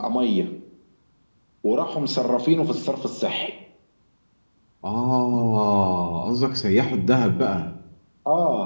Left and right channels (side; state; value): both; inverted; correlation -1.00